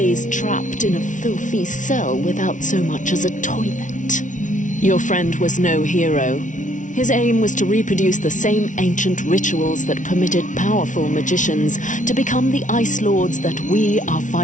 trapped in a filthy cell without so much as a toilet. Your friend was no hero. His aim was to reproduce the same ancient rituals that permitted powerful magicians to become the Ice Lords that we are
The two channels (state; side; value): late; right; 0.37 ms